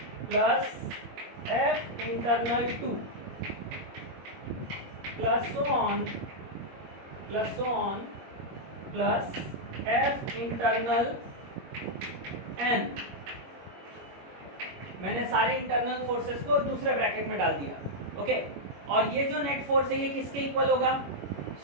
plus F internal 2 plus so on plus F internal n। मैंने सारे इंटरनल फोर्सेस को दूसरे ब्रैकेट में डाल दिया। ओके, और ये जो नेट फोर्स है ये किसके इक्वल होगा,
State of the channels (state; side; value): late; left; 21 ms